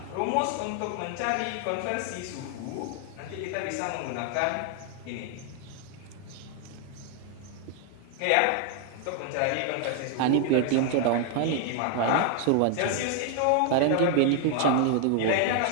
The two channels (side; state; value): both; different; correlation 0.00